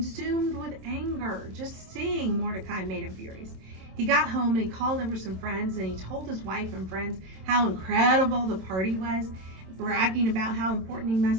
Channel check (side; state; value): left; late; 27 ms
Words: with anger. Just seeing Mordecai made him furious. He got home and he called over some friends, and he told his wife and friends how incredible the party was, bragging about how important he